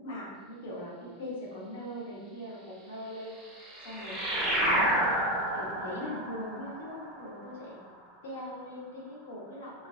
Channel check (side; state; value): both; normal; correlation 0.11